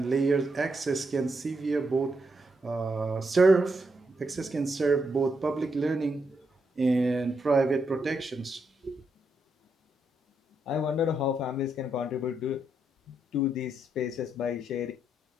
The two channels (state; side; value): normal; both; correlation 0.80